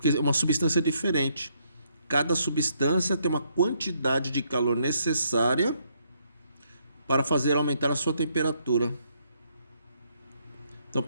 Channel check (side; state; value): both; inverted; correlation -0.73